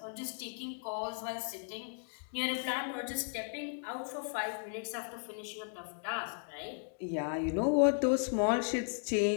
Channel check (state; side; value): silent; right; digital silence